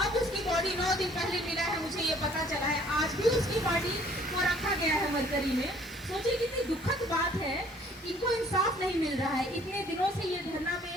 अब उसकी बॉडी 9 दिन पहले मिला है, मुझे ये पता चला है। आज भी उसकी बॉडी को रखा गया है मरकरी में। सोचिए कितनी दुखद बात है, इनको इंसाफ नहीं मिल रहा है। इतने दिनों से ये धरना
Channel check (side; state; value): both; normal; correlation 0.57